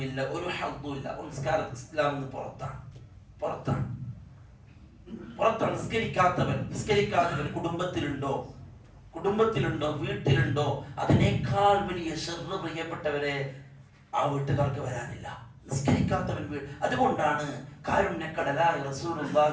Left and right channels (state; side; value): identical; both; correlation 1.00